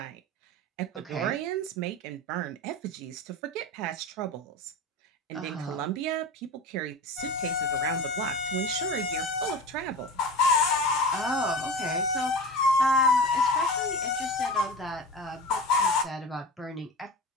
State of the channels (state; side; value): normal; both; correlation 0.31